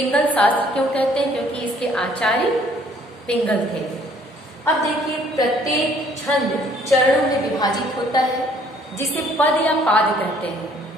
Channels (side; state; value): both; normal; correlation 0.60